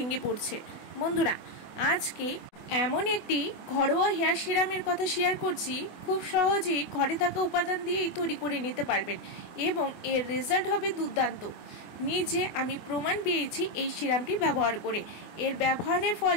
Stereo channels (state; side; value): late; right; 24 ms